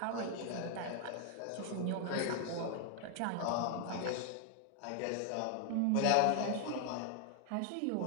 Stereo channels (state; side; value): different; both; correlation 0.00